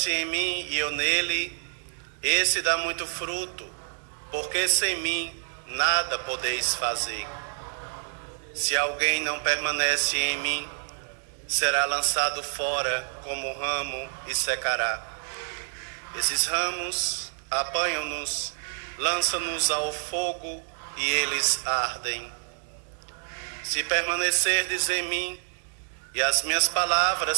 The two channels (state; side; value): silent; left; digital silence